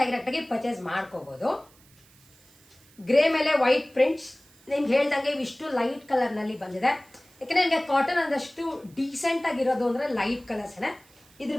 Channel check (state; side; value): noise; right; hiss, 28 dB below the sound